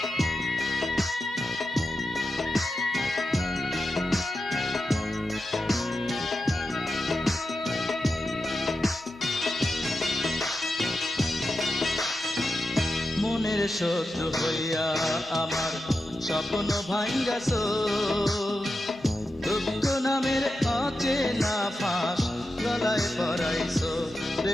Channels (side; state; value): both; normal; correlation 0.89